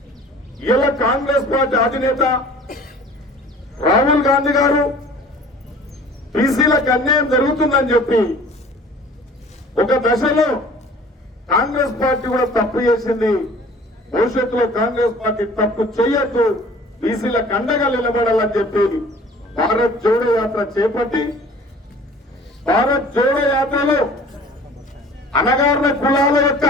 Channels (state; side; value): normal; both; correlation 0.48